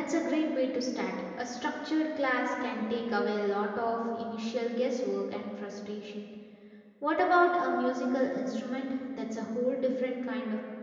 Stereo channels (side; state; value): both; identical; correlation 1.00